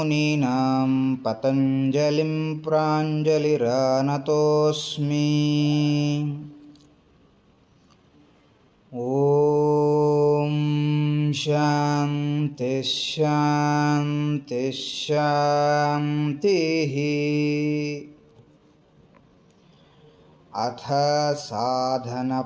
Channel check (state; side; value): identical; both; correlation 1.00